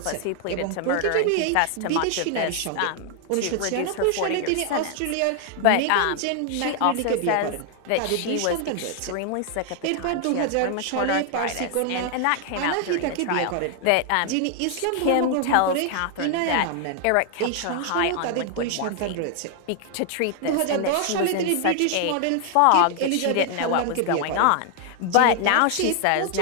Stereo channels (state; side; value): different; both; correlation 0.00